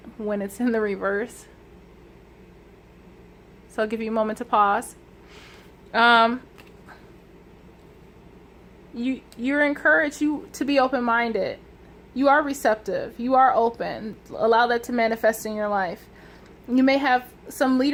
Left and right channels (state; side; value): identical; both; correlation 1.00